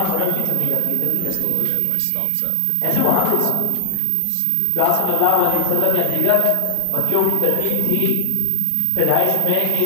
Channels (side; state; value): both; different; correlation 0.00